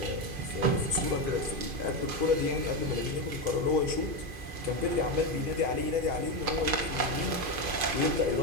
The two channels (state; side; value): late; left; 2.5 ms